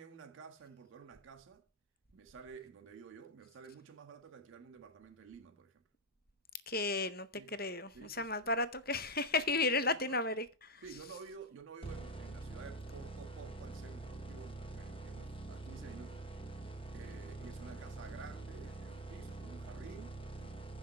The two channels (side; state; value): both; normal; correlation 0.03